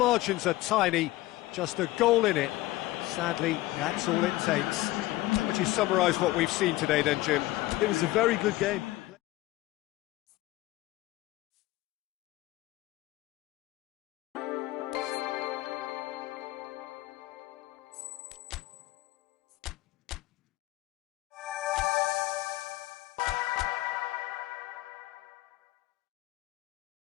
are tiny, just a goal in it. Sadly, that's all it takes. How would you summarise what we've seen today then, Jim? it was a very good game.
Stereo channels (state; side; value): quieter; right; 17.8 dB